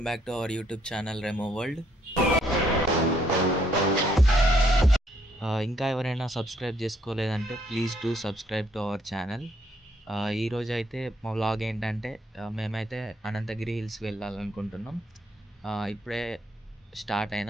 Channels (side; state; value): both; normal; correlation 0.70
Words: back to our YouTube channel Remo World. ఇంకా ఎవరైనా సబ్స్క్రైబ్ చేసుకోలేదంటే please do subscribe to our channel. ఈరోజు అయితే మా వ్లాగ్ ఏంటంటే మేమైతే అనంతగిరి హిల్స్ వెళ్ళాలనుకుంటున్నాం. ఇప్పుడే స్టార్ట్